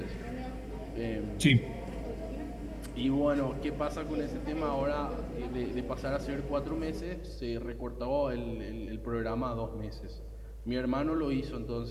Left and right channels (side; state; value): both; identical; correlation 1.00